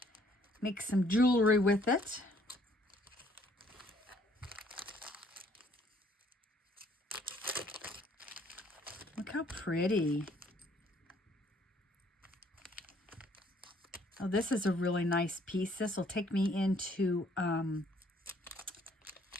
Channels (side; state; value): both; normal; correlation 0.63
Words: Make some jewelry with it. Look how pretty. Oh, this is a really nice piece. This will take me into